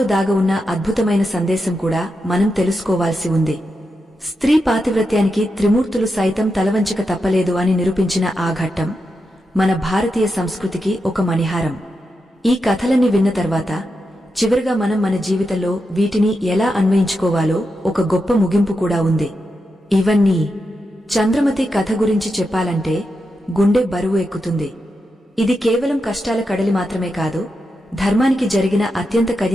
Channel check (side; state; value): both; normal; correlation 0.87